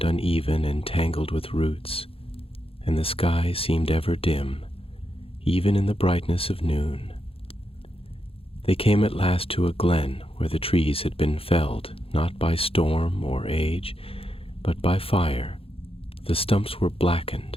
uneven and tangled with roots, and the sky seemed ever dim, even in the brightness of noon. They came at last to a glen where the trees had been felled, not by storm or age, but by fire. The stumps were blackened,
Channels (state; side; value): late; right; 0.27 ms